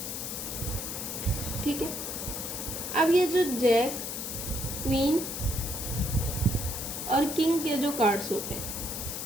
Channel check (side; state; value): left; noise; hiss, 5 dB below the sound